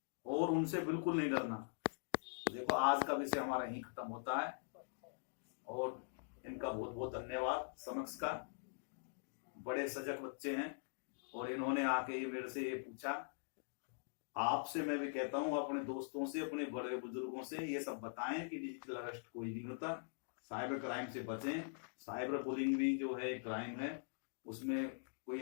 और उनसे बिल्कुल नहीं डरना। तो देखो आज का विषय हमारा यहीं खत्म होता है, और इनका बहुत बहुत धन्यवाद। समक्ष का बड़े सजग बच्चे हैं, और इन्होंने आके ये मेरे से ये पूछा आपसे मैं भी कहता हूँ, अपने दोस्तों से, अपने बड़े बुजुर्गों से ये सब बताएं कि डिजिटल अरेस्ट कोई नहीं होता, साइबर क्राइम से बचें। साइबर बुलिंग भी जो है क्राइम है, उसमें कोई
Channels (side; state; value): right; silent; digital silence